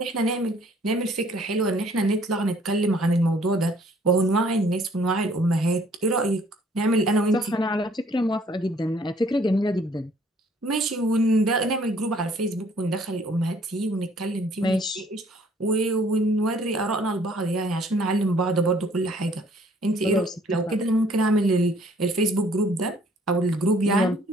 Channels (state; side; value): normal; both; correlation 0.60